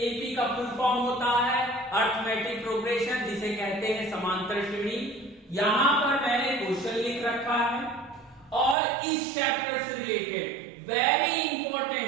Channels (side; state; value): left; drops out; at 8.8 s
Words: का फुल फॉर्म होता है अर्थमेटिक प्रोग्रेशन, जिसे कहते हैं समांतर श्रेणी। यहां पर मैंने क्वेश्चन लिख रखा है और इस चैप्टर से रिलेटेड वेरी